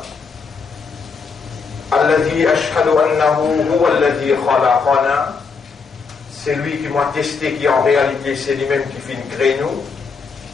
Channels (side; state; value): right; quieter; 5.1 dB